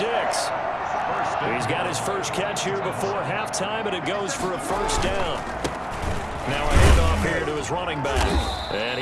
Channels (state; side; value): identical; both; correlation 1.00